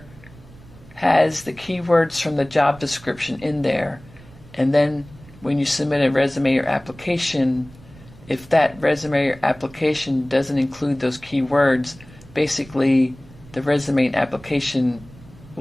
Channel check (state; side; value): noise; right; rumble, 22 dB below the sound